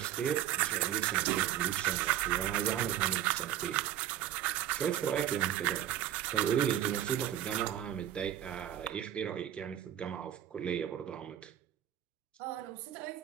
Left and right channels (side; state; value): left; quieter; 11.4 dB